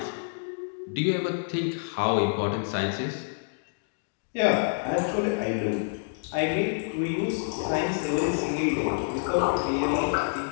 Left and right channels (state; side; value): silent; right; digital silence